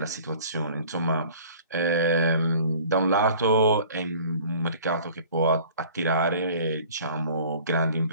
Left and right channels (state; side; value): inverted; both; correlation -0.48